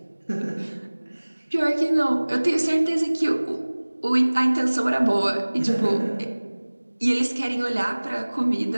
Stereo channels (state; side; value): inverted; both; correlation -1.00